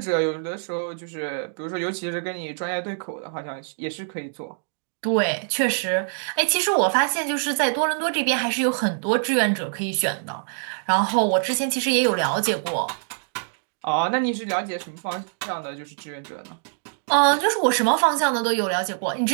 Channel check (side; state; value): left; silent; digital silence